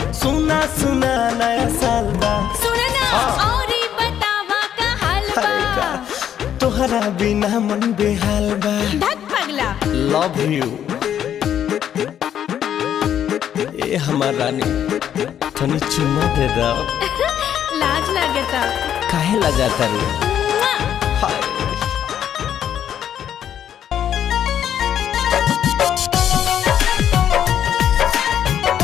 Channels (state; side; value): quieter; right; 9.8 dB